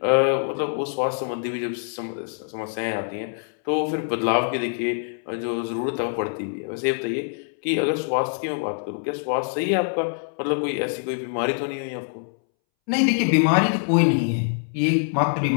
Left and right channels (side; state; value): right; silent; 62 dB below the other